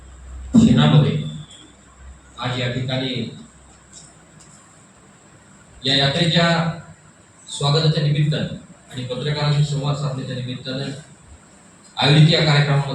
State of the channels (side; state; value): both; identical; correlation 1.00